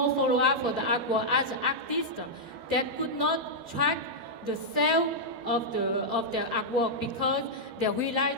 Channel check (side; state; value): left; late; 12 ms